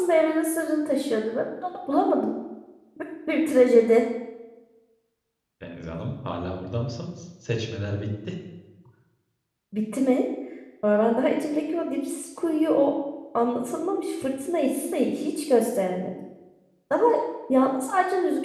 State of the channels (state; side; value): identical; both; correlation 1.00